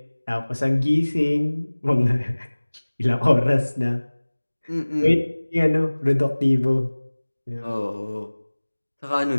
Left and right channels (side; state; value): both; inverted; correlation -1.00